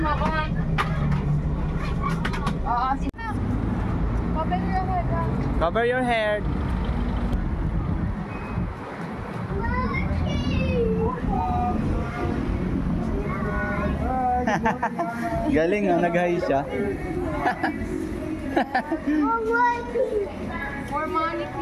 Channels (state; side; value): identical; both; correlation 1.00